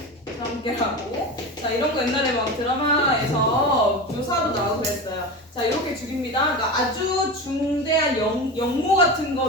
함께하고. 자, 이런 거 옛날에 막 드라마에서 묘사도 나오고 그랬어요. 자, 이렇게 죽입니다. 그러니까 아주 중대한 영모 같은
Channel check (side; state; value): both; normal; correlation 0.25